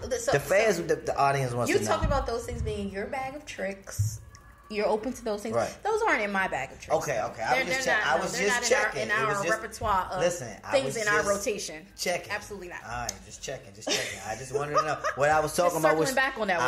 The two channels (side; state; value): both; identical; correlation 1.00